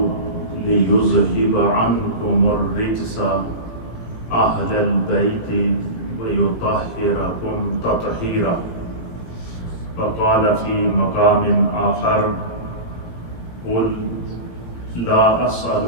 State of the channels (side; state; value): right; late; 17 ms